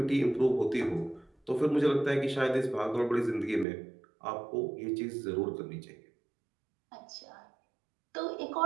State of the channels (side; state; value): left; drops out; at 3.7 s